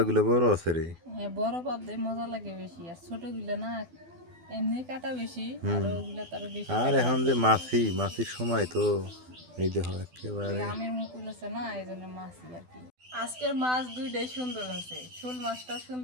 বড় আছে রে। হ্যাঁ, বড় পাবদায় মজা লাগে বেশি, আর ছোটগুলো না এমনি কাটা বেশি, আর হুম। ওগুলো তার বেশি আর কাটা এখন লাগে। যে মাছির সময় তো এই দেখো ওই একেবারে। আমের মুকুল আছে না, এই জন্য মাছই আর কি। আজকের মাছ দুইটাই সুন্দর আছে, শোল মাছটাও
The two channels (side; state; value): left; late; 12 ms